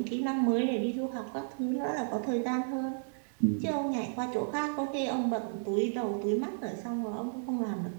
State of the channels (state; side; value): silent; left; digital silence